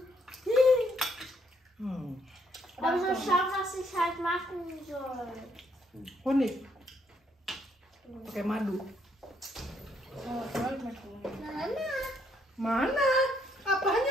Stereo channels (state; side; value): normal; both; correlation 0.71